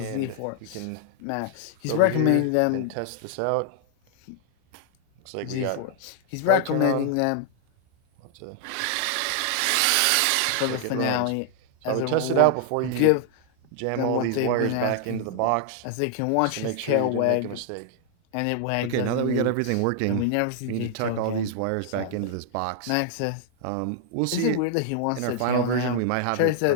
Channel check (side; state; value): both; different; correlation 0.00